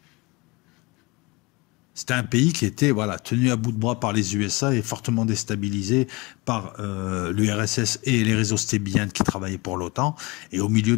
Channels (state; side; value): quieter; right; 25.1 dB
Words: C'était un pays qui était tenu à bout de bras par les USA et fortement déstabilisé par l'URSS et les réseaux Stay Behind qui travaillaient pour l'OTAN. Et au